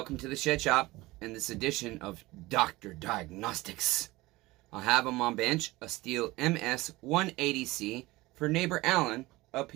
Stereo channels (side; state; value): left; quieter; 20.2 dB